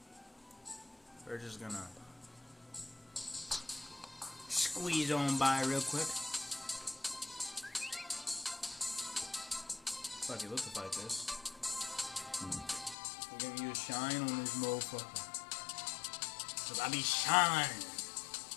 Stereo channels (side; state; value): right; drops out; at 13.0 s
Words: We're just gonna squeeze on by real quick. Fuck it, let's fight this. We're gonna use shine on this motherfucker. Cause I be shine.